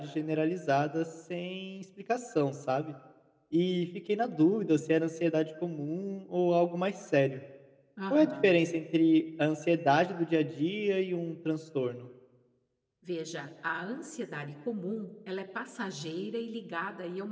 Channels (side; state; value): both; identical; correlation 1.00